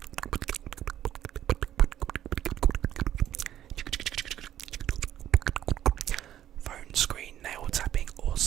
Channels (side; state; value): left; quieter; 11.6 dB